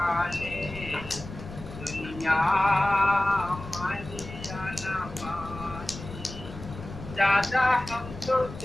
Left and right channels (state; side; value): noise; left; rumble, 13 dB below the sound